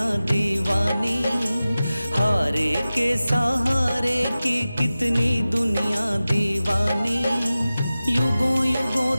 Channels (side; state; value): both; inverted; correlation -0.96